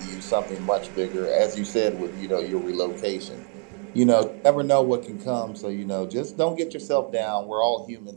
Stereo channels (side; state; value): left; quieter; 39.9 dB